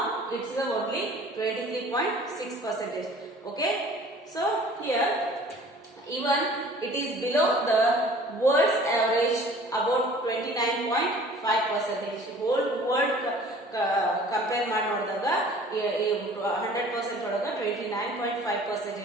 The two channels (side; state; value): both; normal; correlation 0.49